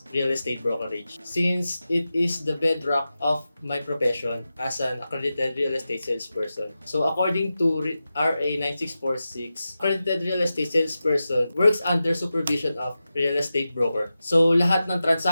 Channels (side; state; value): both; inverted; correlation -0.93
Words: real estate brokerage, since it is the bedrock of my profession as an accredited real estate salesperson. So according to RA 9646, accredited real estate salesperson works under supervision of real estate broker. So lahat ng